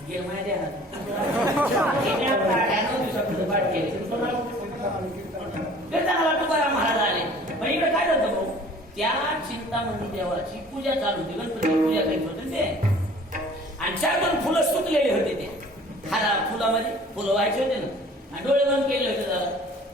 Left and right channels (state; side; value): normal; both; correlation 0.50